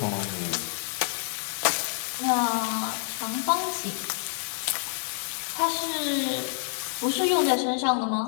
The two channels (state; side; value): silent; right; digital silence